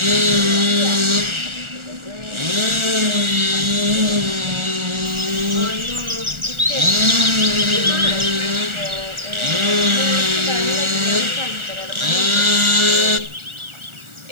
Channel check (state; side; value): late; left; 1.4 ms